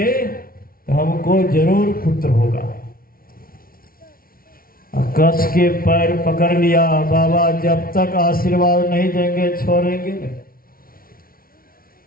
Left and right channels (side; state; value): right; late; 0.43 ms